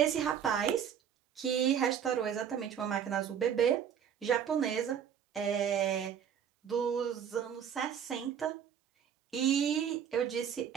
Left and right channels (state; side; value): quieter; left; 8.4 dB